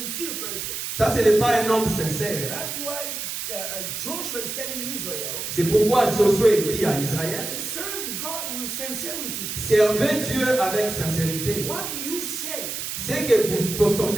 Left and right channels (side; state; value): right; noise; hiss, 5 dB below the sound